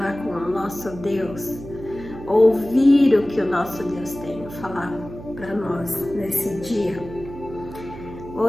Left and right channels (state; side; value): noise; right; hum, 14 dB below the sound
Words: com o nosso Deus, ouvir o que o nosso Deus tem a falar para nós nesse dia.